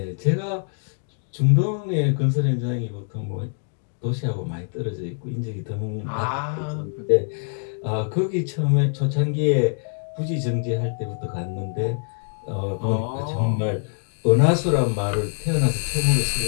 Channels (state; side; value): silent; right; 63 dB below the other